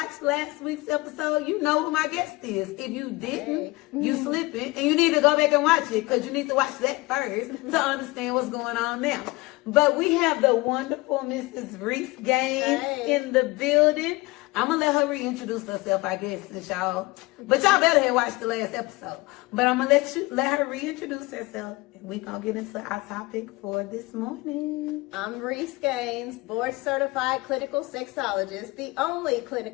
last week's episode, you know who my guest is. If you didn't, you slipping, and you need to go back and watch it, because you need to watch that first to understand what's going on now. But we have the wonderful Mrs. Reese Gaines in the building. I'm gonna let her reintroduce herself, I guess, since y'all. But y'all better have watched the last episode. But I'm gonna let her reintroduce herself, and we gonna get into our topic for this morning. I'm Reese Gaines, board certified clinical sexologist, the only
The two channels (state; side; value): quieter; right; 22.5 dB